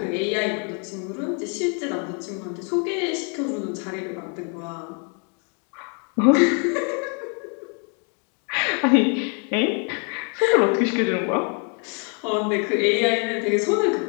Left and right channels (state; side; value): quieter; right; 38.9 dB